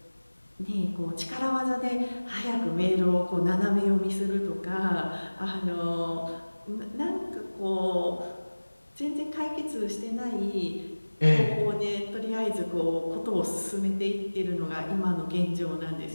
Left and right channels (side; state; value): both; inverted; correlation -1.00